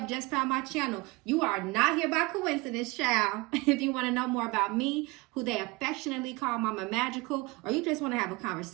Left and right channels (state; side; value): quieter; left; 24.8 dB